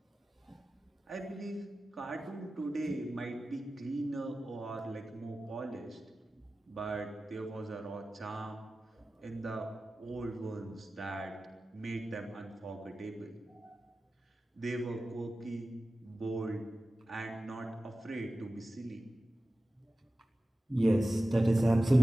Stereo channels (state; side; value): normal; both; correlation 0.95